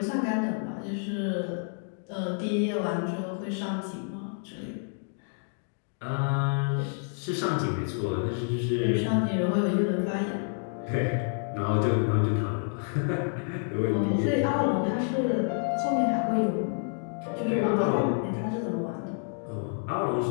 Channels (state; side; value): silent; right; 59 dB below the other